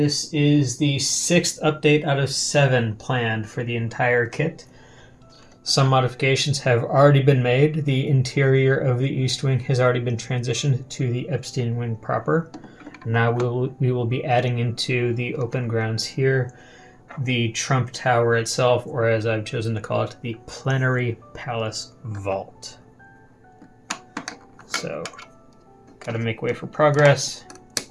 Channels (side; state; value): both; identical; correlation 1.00